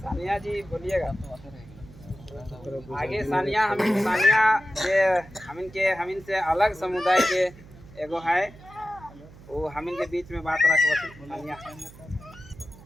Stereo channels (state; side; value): noise; right; hum, 20 dB below the sound